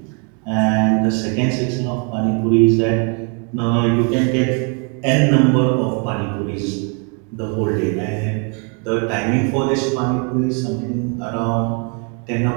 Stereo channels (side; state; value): left; quieter; 37.3 dB